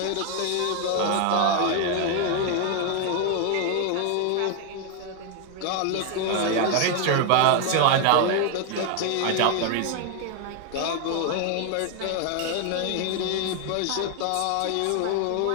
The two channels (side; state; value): both; different; correlation 0.01